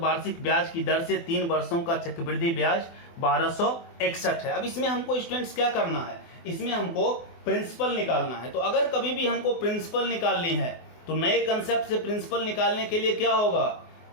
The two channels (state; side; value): late; right; 24 ms